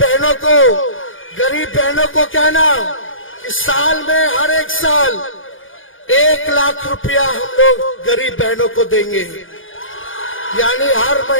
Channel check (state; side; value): late; right; 0.58 ms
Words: को, गरीब बहनों को कहना कि साल में हर एक साल 1 लाख रुपया हम लोग गरीब बहनों को देंगे। यानी हर